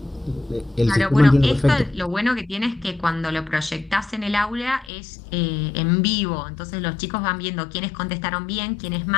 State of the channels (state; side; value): drops out; right; at 4.9 s